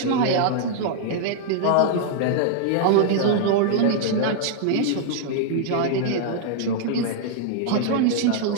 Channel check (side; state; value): both; different; correlation -0.01